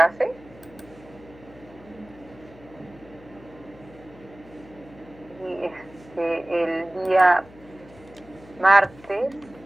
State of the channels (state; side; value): noise; left; hum, 22 dB below the sound